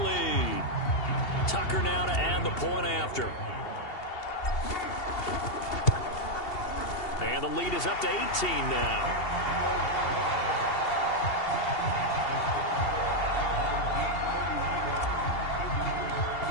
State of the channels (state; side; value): late; right; 2.7 ms